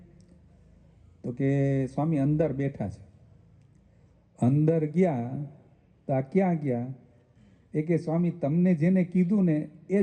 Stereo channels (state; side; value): identical; both; correlation 1.00